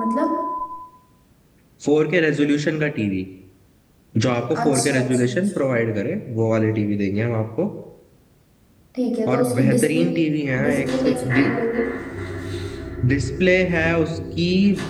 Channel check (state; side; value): identical; both; correlation 1.00